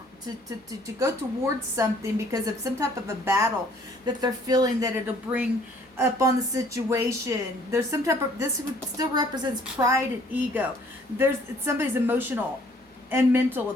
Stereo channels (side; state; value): both; normal; correlation 0.59